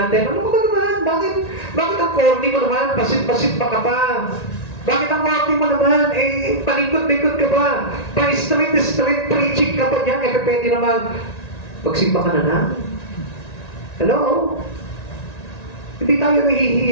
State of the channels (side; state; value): right; late; 1.9 ms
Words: Ano ba naman? Bakit ang corny mo naman? Pasit-pasit pa ka pa. Bakit ang corny mo naman? Eh, palikot-likot ka ba? Pa-street preaching ka pa dyan. Eh, pwede naman. Pagsimba ka na. Hello? Hindi tayo